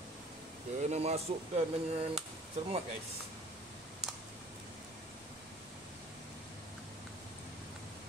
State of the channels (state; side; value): normal; both; correlation 0.51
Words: Kena masukkan dengan cermat guys.